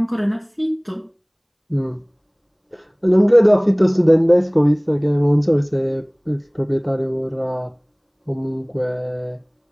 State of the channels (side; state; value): both; identical; correlation 1.00